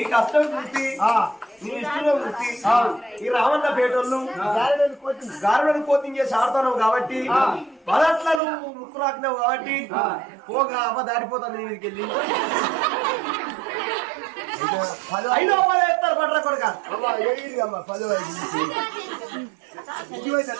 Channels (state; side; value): drops out; left; at 8.4 s